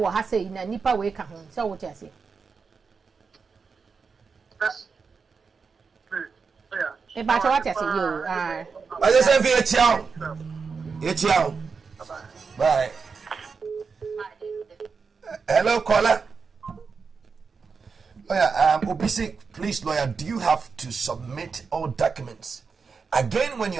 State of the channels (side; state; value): left; quieter; 5.2 dB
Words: has say in a nipa way come home. So what I say? But what I say, you I just say, bye. Hello, caller. Lawyer, Obisi, please, lawyer, do you have to submit all documents again when